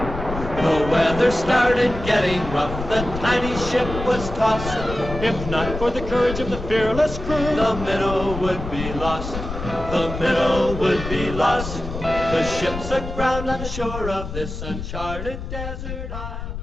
weather started getting rough, the tiny ship was tossed. If not for the courage of the fearless crew, the minnow would be lost. The minnow would be lost. The ship's aground on the shore of this uncharted desert isle.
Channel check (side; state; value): left; noise; rumble, 8 dB below the sound